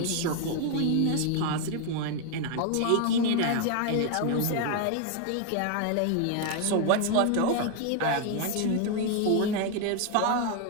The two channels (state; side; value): different; both; correlation 0.01